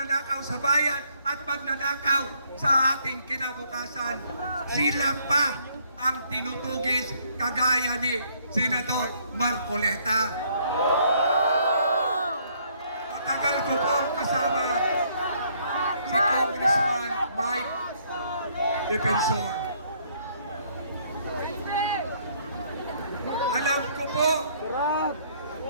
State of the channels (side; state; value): both; inverted; correlation -0.66